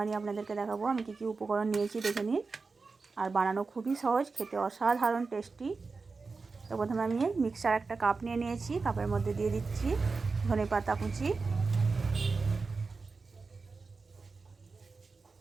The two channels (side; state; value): left; quieter; 4.3 dB